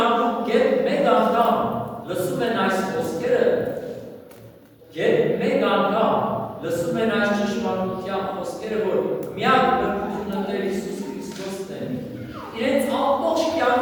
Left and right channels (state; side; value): identical; both; correlation 1.00